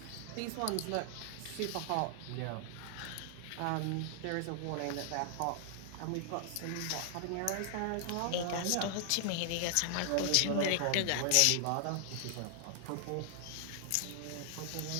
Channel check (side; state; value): both; different; correlation 0.00